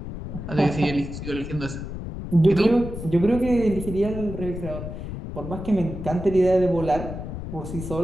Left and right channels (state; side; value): noise; left; rumble, 8 dB below the sound